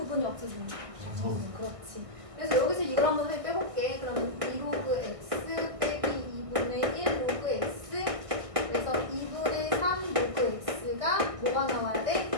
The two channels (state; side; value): late; left; 1.6 ms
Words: 없어지니까. 그렇지. 그래서 여기서 이걸 한번 빼볼게. 그럼 2로그 x 빼기 2분의 1 로그 x. 그래서 2분의 3 로그 x가 뭐가 나와야 돼?